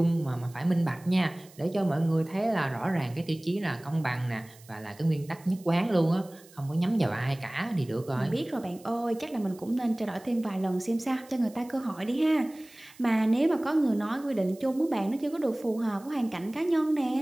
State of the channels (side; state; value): right; noise; hiss, 24 dB below the sound